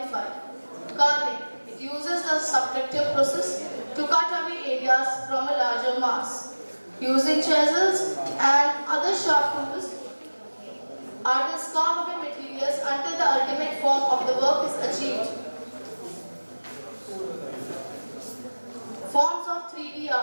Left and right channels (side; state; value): both; inverted; correlation -1.00